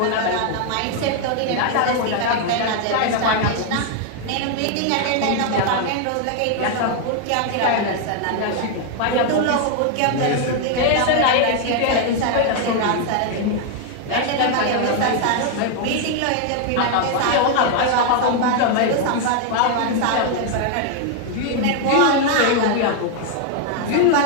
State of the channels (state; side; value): different; both; correlation 0.00